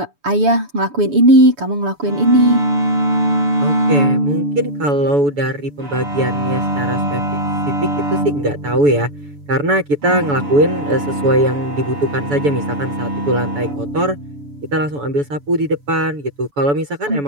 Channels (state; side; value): late; left; 7.0 ms